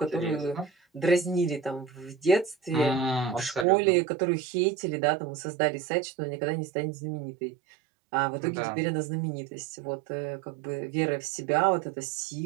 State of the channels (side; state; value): left; drops out; at 3.7 s